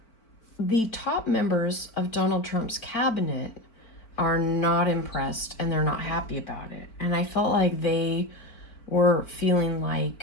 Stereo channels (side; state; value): right; late; 4.5 ms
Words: the top members of Donald Trump's cabinet are not impressed and they're not happy about it. And I felt like they were feeling